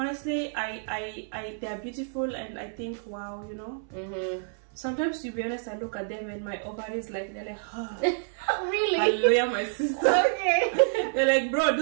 they are beautiful, and I think, wow, you know. Sometimes, to be honest, I look at them and my ovaries, like, they're like, oh, really? Hallelujah, my sister. Okay. They're like, bro,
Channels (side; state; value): left; silent; 59 dB below the other